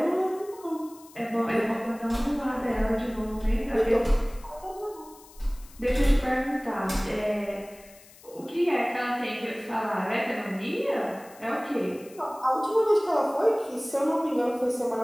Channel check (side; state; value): left; noise; hiss, 23 dB below the sound